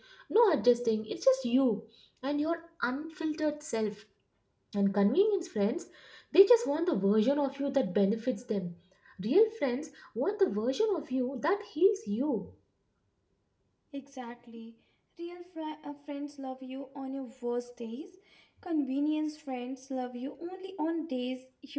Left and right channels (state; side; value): identical; both; correlation 1.00